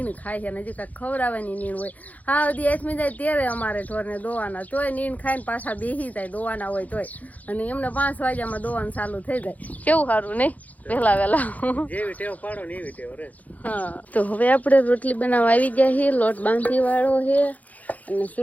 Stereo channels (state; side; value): late; right; 0.076 ms